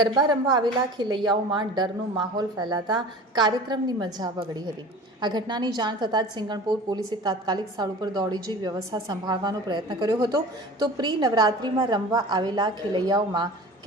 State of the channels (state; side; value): normal; both; correlation 0.39